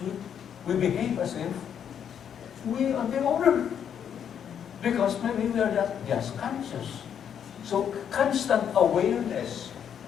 we behave as if we are the owner. Because maybe we are not just conscious. So constant awareness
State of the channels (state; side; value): quieter; right; 8.5 dB